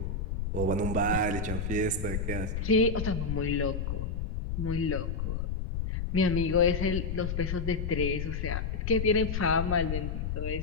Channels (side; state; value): left; noise; rumble, 2 dB below the sound